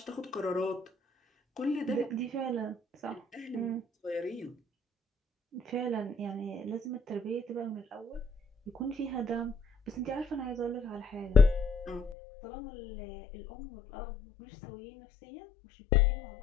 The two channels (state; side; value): drops out; right; at 12.2 s